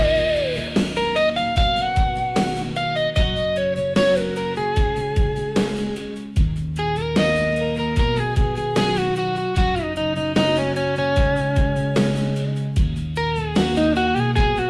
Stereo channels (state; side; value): identical; both; correlation 1.00